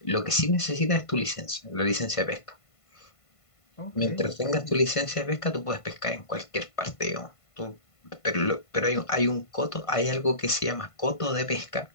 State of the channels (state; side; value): late; right; 1.5 ms